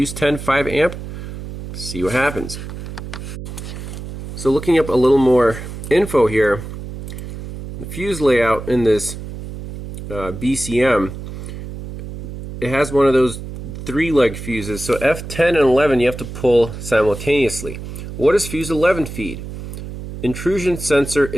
10, 5 amp, see what happens. So looking up a little more info here, the fuse layout in this BCM, it has one of those 3-leg fuses. So F10 and 11 you have to pull simultaneously. What does fuse 11 feed? Intrusion sensor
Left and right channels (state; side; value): noise; right; hum, 10 dB below the sound